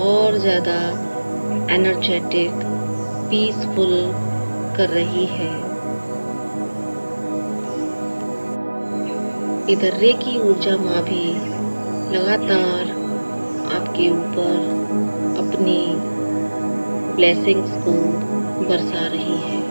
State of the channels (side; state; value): both; inverted; correlation -1.00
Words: ज़्यादा एनर्जेटिक, पीसफुल कर रही है। इधर रेकी ऊर्जा माँ भी लगातार आपके ऊपर अपनी ब्लेसिंग्स को बरसा रही है।